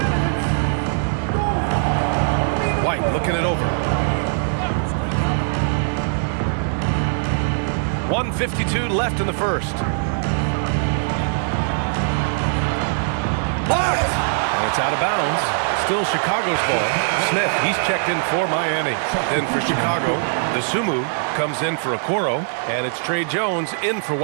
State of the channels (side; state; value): left; silent; digital silence